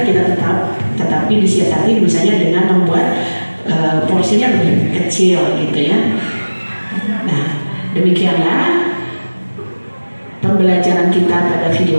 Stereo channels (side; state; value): both; inverted; correlation -1.00